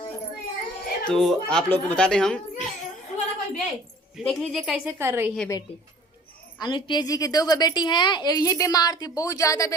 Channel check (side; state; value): both; normal; correlation 0.49